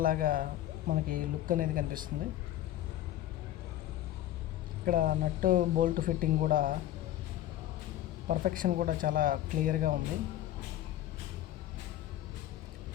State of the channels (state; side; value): quieter; right; 13.1 dB